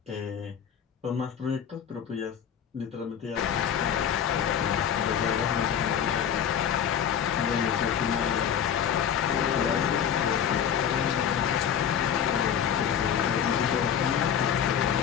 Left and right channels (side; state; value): right; quieter; 8.7 dB